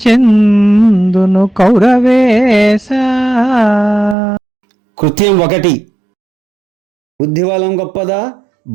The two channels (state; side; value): drops out; left; at 4.2 s